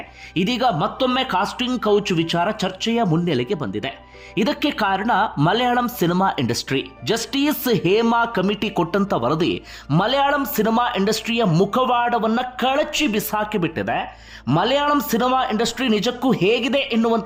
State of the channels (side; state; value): both; identical; correlation 1.00